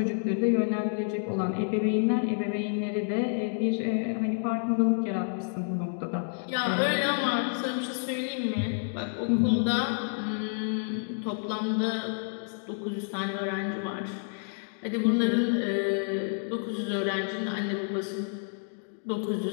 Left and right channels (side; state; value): right; silent; digital silence